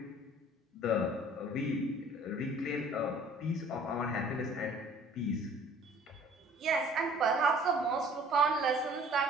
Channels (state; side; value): normal; both; correlation 0.52